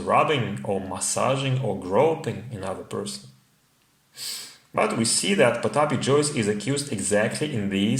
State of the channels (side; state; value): both; identical; correlation 1.00